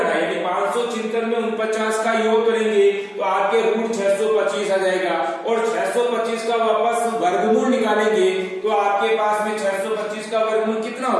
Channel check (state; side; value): identical; both; correlation 1.00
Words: है, यानी 576 में 49 का योग करेंगे तो आपके रूट 625 आ जाएगा, और 625 का वापस वर्गमूल निकालेंगे तो आपके पास में 625 का वर्गमूल कितना